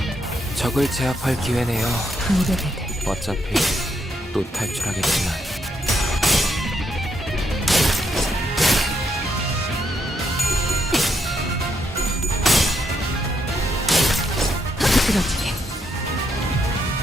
적을 제압할 기회네요. 무대배들. 어차피 또 탈출하겠지만. 부드러지게.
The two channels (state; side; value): normal; both; correlation 0.77